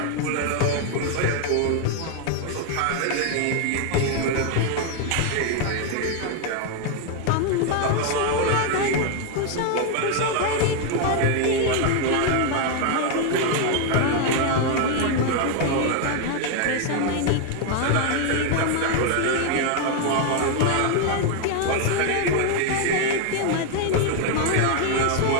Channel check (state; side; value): different; both; correlation 0.01